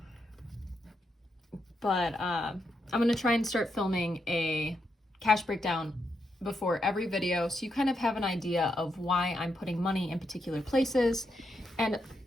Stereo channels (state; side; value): normal; both; correlation 0.82